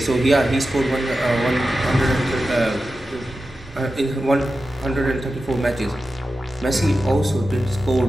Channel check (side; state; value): both; normal; correlation 0.92